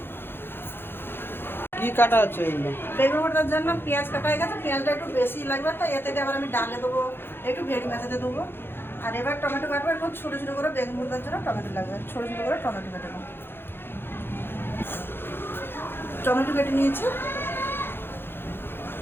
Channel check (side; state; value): right; late; 0.10 ms